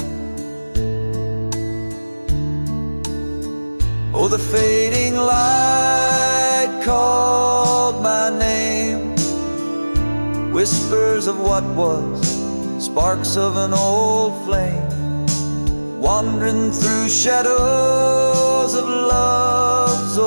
Oh, the fading light called my name. Whispers of what was, sparks of an old flame, wandering through shadows of love's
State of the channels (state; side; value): inverted; both; correlation -1.00